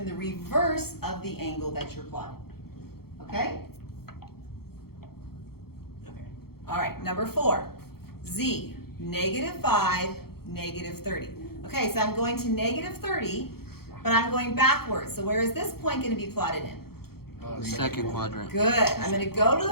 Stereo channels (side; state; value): right; late; 0.94 ms